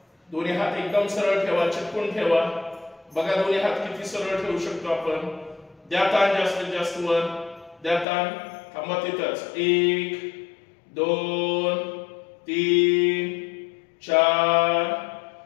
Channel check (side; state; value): right; drops out; at 8.1 s